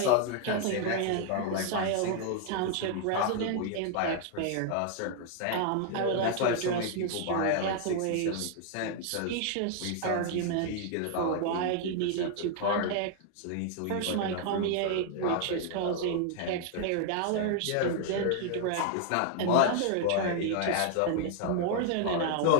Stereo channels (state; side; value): different; both; correlation 0.00